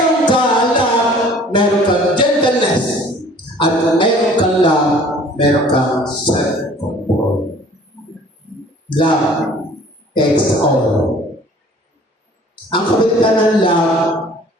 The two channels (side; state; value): both; normal; correlation 0.51